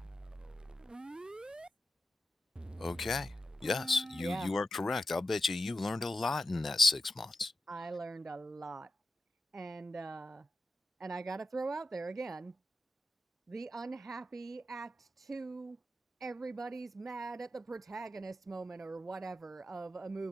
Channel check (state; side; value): normal; both; correlation 0.92